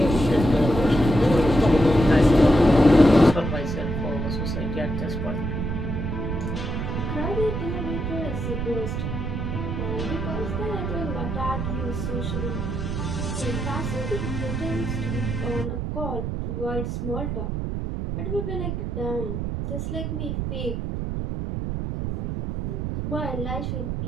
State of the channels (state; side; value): noise; right; rumble, 3 dB below the sound